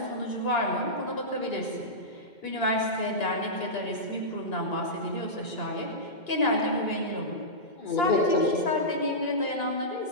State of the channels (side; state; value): right; late; 2.2 ms